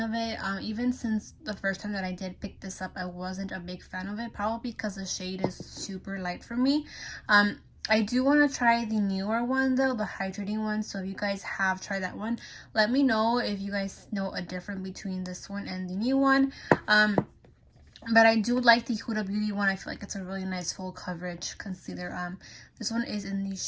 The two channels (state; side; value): identical; both; correlation 1.00